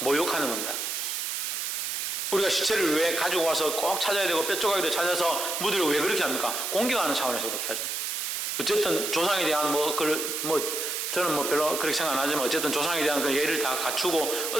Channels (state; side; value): noise; right; hiss, 2 dB below the sound